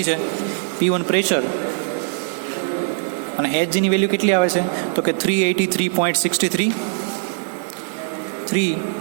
છે? P1 પ્રેશર અને Hgની વેલ્યુ કેટલી આવે છે તો કે 383.63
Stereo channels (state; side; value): silent; left; digital silence